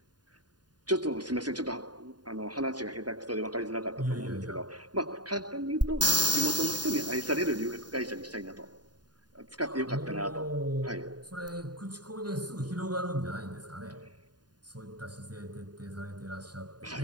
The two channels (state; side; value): late; left; 0.70 ms